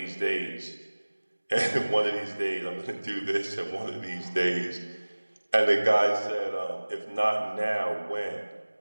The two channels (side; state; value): both; inverted; correlation -1.00